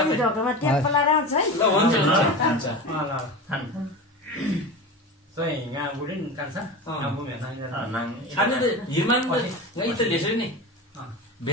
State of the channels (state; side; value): normal; both; correlation 0.28